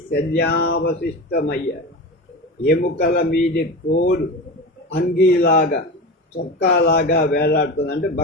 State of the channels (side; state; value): both; normal; correlation 0.26